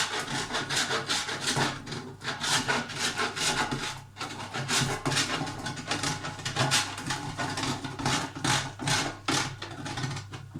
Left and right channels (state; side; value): identical; both; correlation 1.00